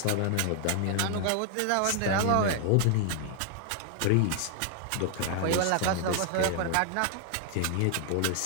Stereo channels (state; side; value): different; both; correlation 0.00